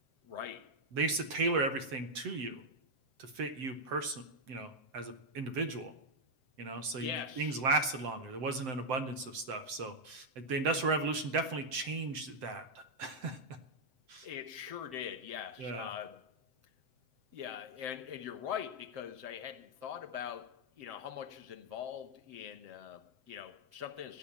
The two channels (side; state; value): left; late; 7.7 ms